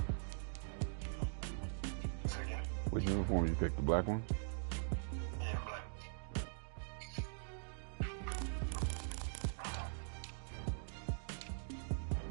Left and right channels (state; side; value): silent; left; digital silence